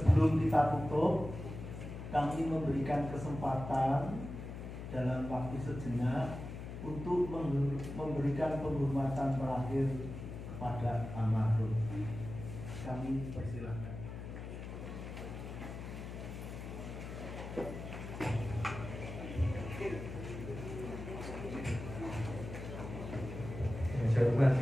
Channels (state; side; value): noise; left; hum, 8 dB below the sound